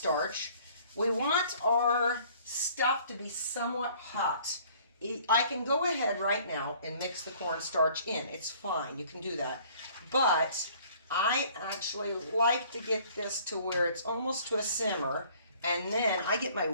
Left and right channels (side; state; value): both; inverted; correlation -0.55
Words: We want our stuff to be somewhat hot. I can go ahead right now and mix the cornstarch in. It's fine. You can do that. But I actually like to get this to where it's almost to a simmer. And then I get my